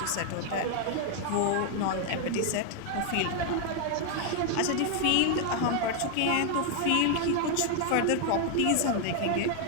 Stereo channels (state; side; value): different; both; correlation 0.00